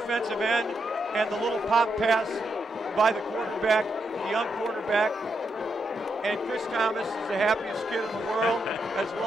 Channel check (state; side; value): normal; both; correlation 0.82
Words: end, and the little pop pass by the quarterback, the young quarterback. And Chris Thomas is the happiest kid in the world as